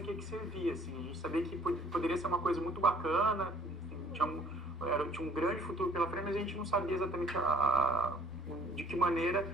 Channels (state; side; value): normal; both; correlation 0.58